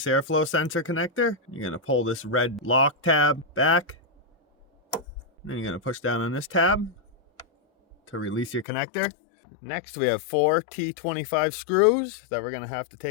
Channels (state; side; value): drops out; right; at 8.7 s